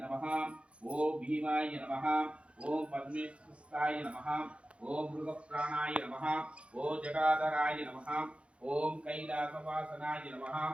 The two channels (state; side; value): late; left; 0.060 ms